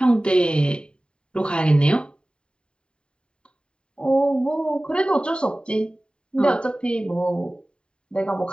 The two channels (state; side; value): late; right; 0.051 ms